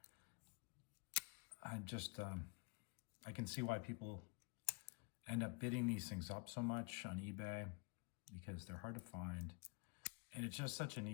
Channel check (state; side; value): quieter; right; 32.1 dB